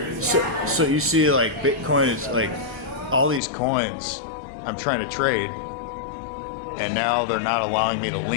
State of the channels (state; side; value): drops out; right; at 3.4 s